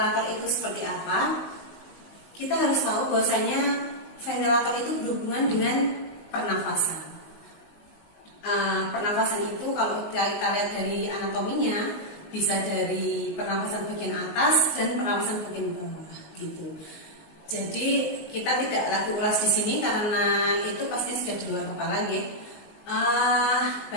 itu seperti apa, kita harus tahu bahwasanya ventilator itu berhubungan dengan pernafasan. Pernafasan itu kalau kita lihat dari anatominya bisa dari pernafasan bagian atas dan pernafasan bagian bawah gitu. Jadi kita tidak lagi ulas di sini karena itu pasti sudah di luar kepala ya.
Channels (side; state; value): right; late; 19 ms